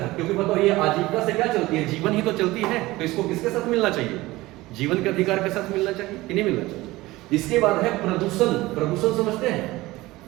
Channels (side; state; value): left; quieter; 19.1 dB